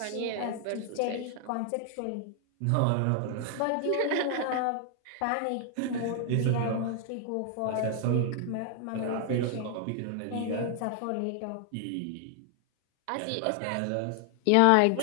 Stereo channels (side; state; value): both; different; correlation 0.00